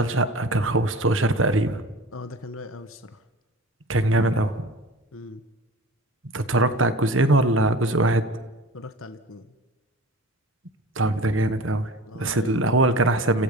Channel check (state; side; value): normal; both; correlation 0.38